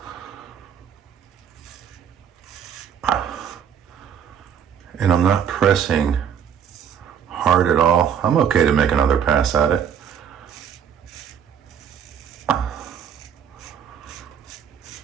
And I'm not pressing hard at all. I'm okay to make another pass at it.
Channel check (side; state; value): left; quieter; 8.2 dB